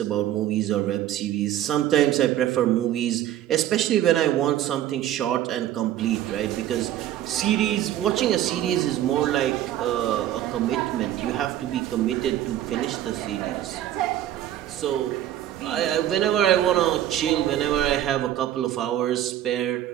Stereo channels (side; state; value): left; quieter; 12.2 dB